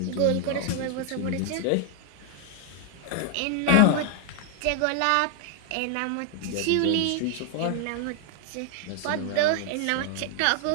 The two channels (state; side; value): different; both; correlation 0.00